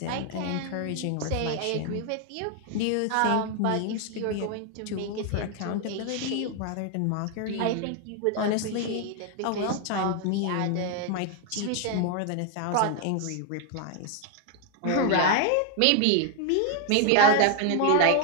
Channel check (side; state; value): both; different; correlation 0.00